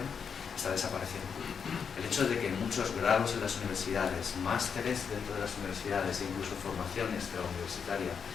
está desapareciendo. El hecho de que muchos grados en las universidades, másteres dentro de las universidades e incluso formaciones universitaria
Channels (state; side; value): quieter; right; 6.6 dB